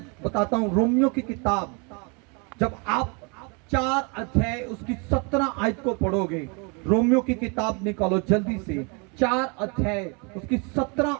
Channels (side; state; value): left; quieter; 32.7 dB